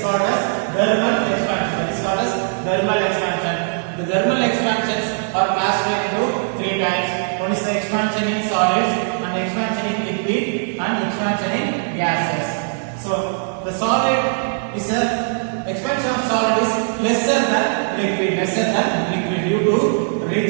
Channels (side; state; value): left; silent; digital silence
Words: called as thermal expansion. The thermal expansions are classified into three types. One is the expansion in solids, and expansion in liquid, and expansion in gases. So the expansion of solid is lesser than liquid due to